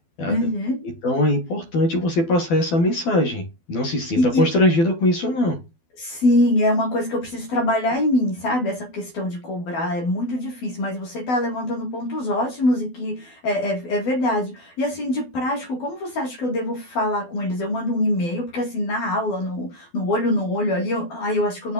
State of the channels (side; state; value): right; late; 12 ms